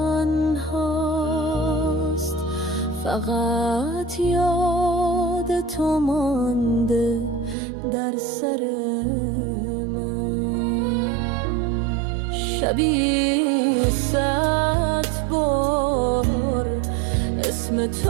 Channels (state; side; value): drops out; left; at 7.6 s